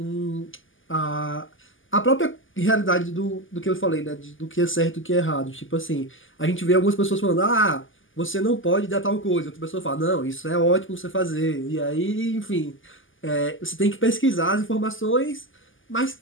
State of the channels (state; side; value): late; right; 0.58 ms